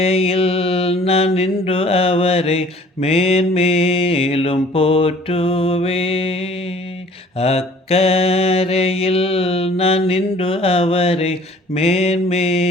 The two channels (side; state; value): both; normal; correlation 0.52